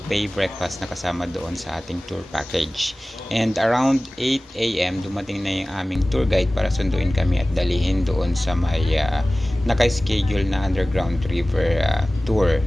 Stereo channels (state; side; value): normal; both; correlation 0.98